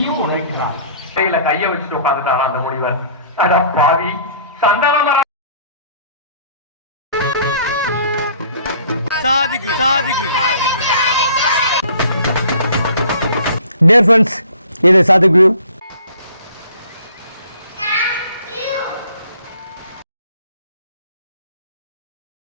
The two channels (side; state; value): both; inverted; correlation -0.53